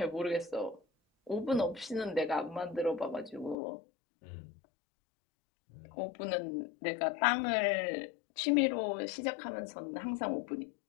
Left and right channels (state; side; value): drops out; right; at 3.6 s